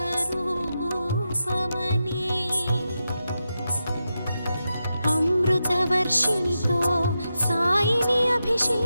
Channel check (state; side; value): inverted; both; correlation -0.88